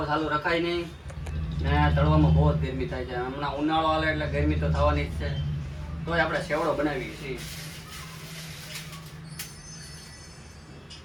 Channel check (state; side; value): identical; both; correlation 1.00